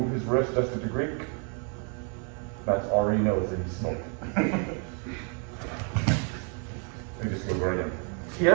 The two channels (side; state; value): left; quieter; 38.7 dB